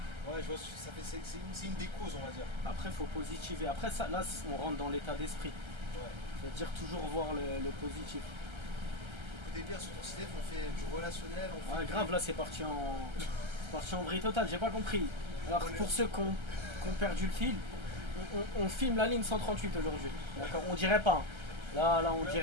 Ouais, je vois, c'est une des causes, on va dire. Après, faut positiver. Après, ça, là, on rentre dans l'état d'esprit. Ouais. C'est-à-dire toujours voir le positif. Écoutez bien, sur ton CDF, on fait du relationnel. On fait Ah, grave, là, c'est parti en vrille totale. J'ai pas compris. Alors, pour ceux qui ont perdu le fil, on filme la ligne 138 aujourd'hui. D'accord, on dirait pas. Là, on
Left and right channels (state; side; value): late; left; 1.3 ms